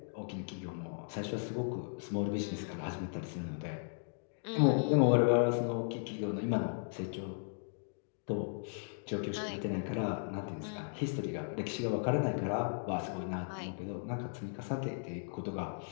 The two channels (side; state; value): right; silent; digital silence